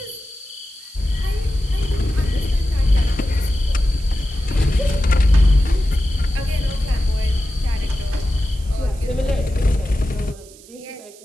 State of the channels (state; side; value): noise; right; hiss, 22 dB below the sound